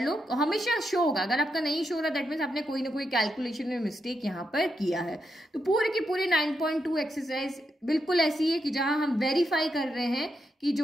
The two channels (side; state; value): both; normal; correlation 0.83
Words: लो। हमेशा शो होगा, अगर आपका नहीं शो हो रहा दैट मीन्स आपने कोई ना कोई कैलकुलेशन में मिस्टेक यहाँ पर किया है। तो पूरे की पूरी 9.2 एक्सरसाइज बिल्कुल ऐसी है कि जहां हम वेरीफाई कर रहे हैं कि